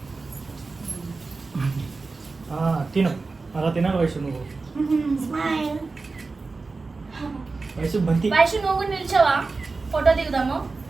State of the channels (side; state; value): left; quieter; 3.9 dB